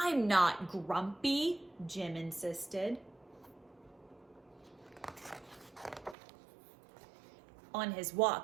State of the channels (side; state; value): left; drops out; at 6.2 s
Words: not grumpy, Jim insisted. On his